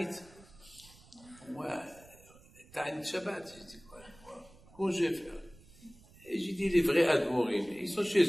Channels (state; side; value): noise; right; rumble, 24 dB below the sound